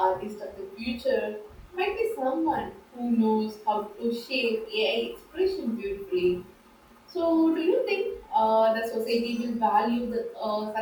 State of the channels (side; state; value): both; identical; correlation 1.00